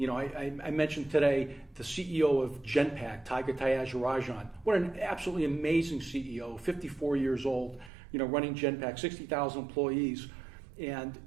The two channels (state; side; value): drops out; left; at 7.9 s